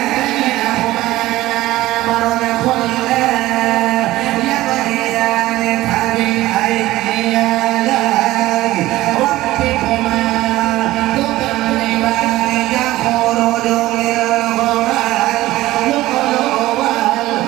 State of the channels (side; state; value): left; quieter; 16.8 dB